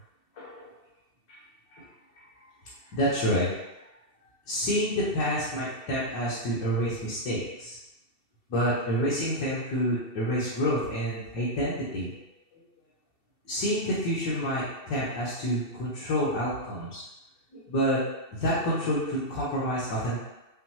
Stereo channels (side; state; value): right; late; 2.7 ms